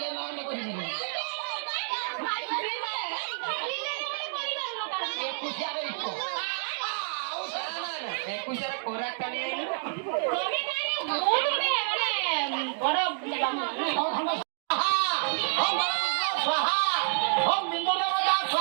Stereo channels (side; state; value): left; silent; digital silence